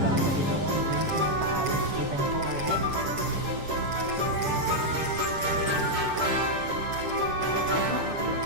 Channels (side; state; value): left; late; 7.2 ms